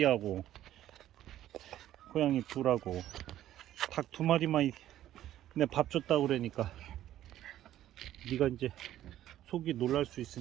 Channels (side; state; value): left; quieter; 12.7 dB